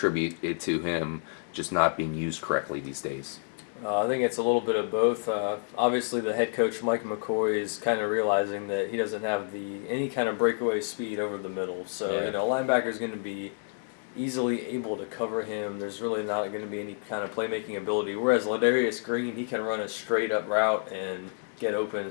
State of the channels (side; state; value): right; silent; digital silence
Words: it to him just not being used correctly these days? I think it's a little bit of both. Obviously, the head coach, Mike McCoy, is kind of realizing that he doesn't have any kind of breakaway speed over the middle. So, linebacker is going to be easily able to cover him. There's really not going to be any kind of playmaking ability. Whereas Ledarius Green, he can run a straight up route and get open